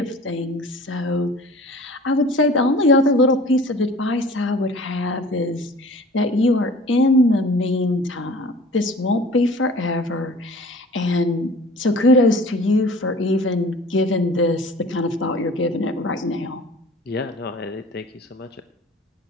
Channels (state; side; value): normal; both; correlation 0.45